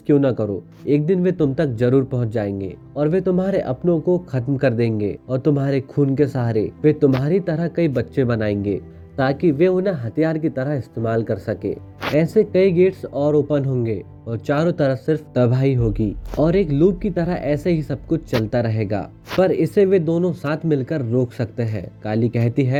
क्यों ना करो, एक दिन वे तुम तक जरूर पहुंच जाएंगे और वे तुम्हारे अपनों को खत्म कर देंगे और तुम्हारे खून के सहारे वे तुम्हारी तरह कई बच्चे बनाएंगे ताकि वे उन्हें हथियार की तरह इस्तेमाल कर सके। ऐसे कई गेट्स और ओपन होंगे और चारों तरफ सिर्फ तबाही होगी और एक लूप की तरह ऐसे ही सब कुछ चलता रहेगा, पर इसे वे दोनों साथ मिलकर रोक सकते हैं। काली कहती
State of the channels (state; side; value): identical; both; correlation 1.00